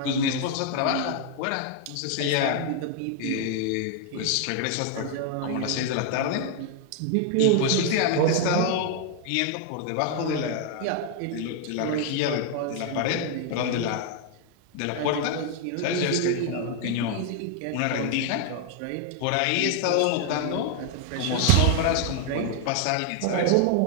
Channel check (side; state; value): both; different; correlation 0.00